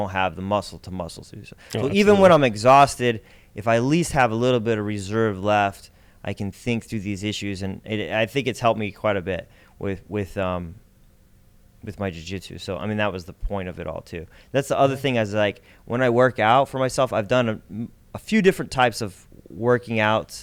have the muscle to muscle through. So even when I'm exhausted, if I at least have a little bit of reserve left, I can think through these issues, and I think it's helped me quite a bit with my jiu-jitsu. So I mean, that was the point of it all too. That's the other thing, is like when I work out for myself, I've done a few different types of working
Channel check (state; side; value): identical; both; correlation 1.00